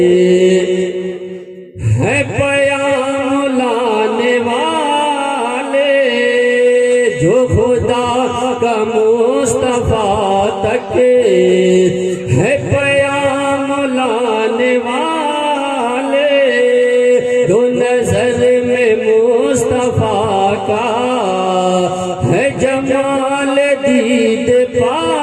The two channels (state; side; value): identical; both; correlation 1.00